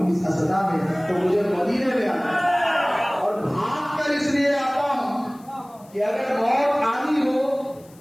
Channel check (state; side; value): noise; left; hiss, 28 dB below the sound